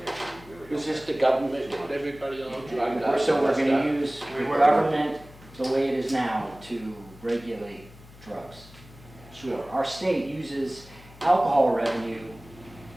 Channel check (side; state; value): left; noise; hum, 21 dB below the sound